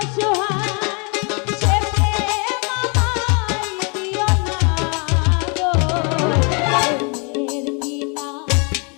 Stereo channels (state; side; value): quieter; right; 34.8 dB